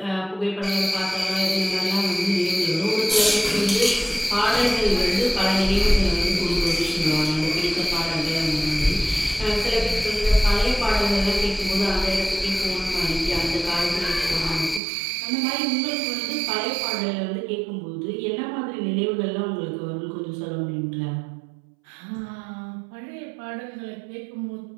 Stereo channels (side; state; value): left; drops out; at 14.8 s